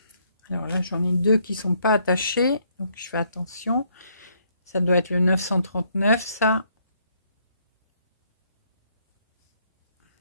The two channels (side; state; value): both; inverted; correlation -0.70